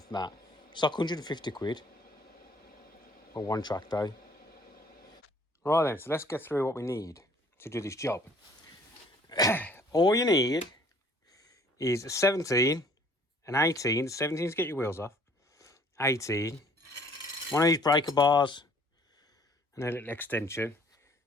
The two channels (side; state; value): both; normal; correlation 0.57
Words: that, it's like 150 quid for one track day. Right then, so let's get through what we need to do this job. All you need is a 17, an 18, 17 to get your wheels off, 18, one of these breaker bars, and a little extension.